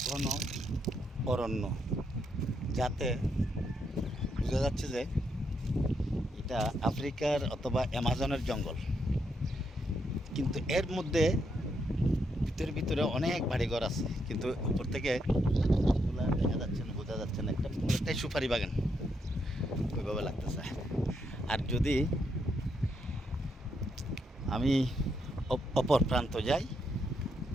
ঘন অরণ্য, যাতে বোঝা যাচ্ছে যে এটা আফ্রিকার অথবা অ্যামাজনের জঙ্গল। কিন্তু এর মধ্যে ভিতরে ভিতরে অনেক বাড়িঘর আছে, কিন্তু উপর থেকে এগুলা দেখা যাচ্ছে না, বোঝা যাচ্ছে না। একটা পুরোটাই সুপারি বাগান ওইভাবে লাগতেছে। আর যদি আমি অপর প্রান্ত যাই,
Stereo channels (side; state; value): both; normal; correlation 0.78